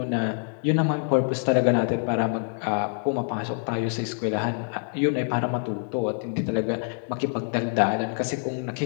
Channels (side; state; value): right; silent; 61 dB below the other